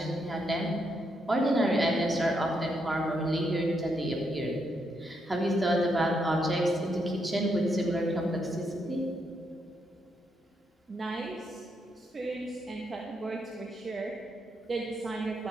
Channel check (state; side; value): normal; both; correlation 0.79